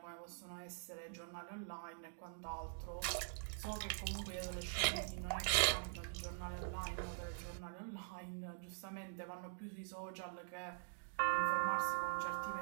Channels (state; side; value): silent; left; digital silence